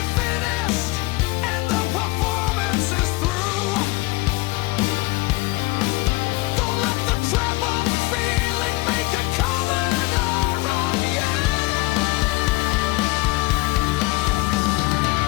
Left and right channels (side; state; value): right; quieter; 22.8 dB